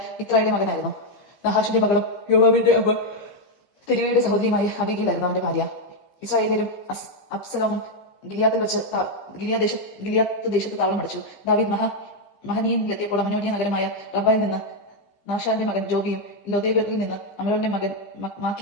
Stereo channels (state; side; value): late; right; 15 ms